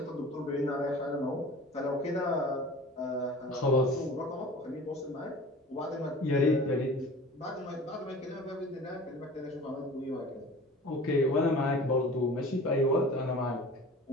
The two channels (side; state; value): both; normal; correlation 0.41